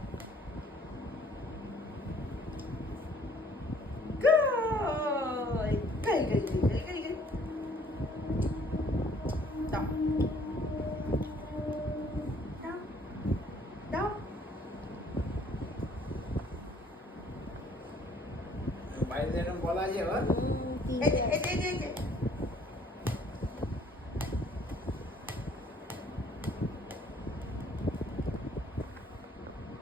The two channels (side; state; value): both; normal; correlation 0.59